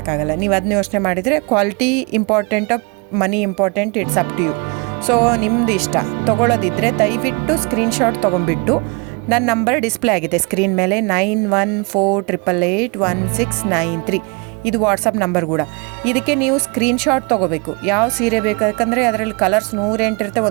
ನೀವು ಅದನ್ನ ಯೋಚನೆ ಮಾಡಿದರೆ ಕ್ವಾಲಿಟಿ ಇಂಪಾರ್ಟೆಂಟೋ money important, it's up to you. So ನಿಮ್ಮದು ಇಷ್ಟ. ತೊಗೊಳ್ಳೋದಿದ್ದರೆ ದಯವಿಟ್ಟು ಸ್ಕ್ರೀನ್ಶಾಟ್ ತೊಗೊಂಡ್ಬಿಟ್ಟು, ನನ್ನ ನಂಬರ್ ಡಿಸ್ಪ್ಲೇ ಆಗಿದೆ ಸ್ಕ್ರೀನ್ ಮೇಲೆ, 9148881693. ಇದು ವಾಟ್ಸಪ್ ನಂಬರ್ ಕೂಡ. ಇದಕ್ಕೆ ನೀವು ಸ್ಕ್ರೀನ್ಶಾಟ್ ತೊಗೋಬೇಕು. ಯಾವ ಸೀರೆ ಬೇಕು, ಯಾಕಂದರೆ ಅದರಲ್ಲಿ ಕಲರ್ಸ್ 108 ಇರುತ್ತೆ,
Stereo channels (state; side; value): quieter; left; 31.9 dB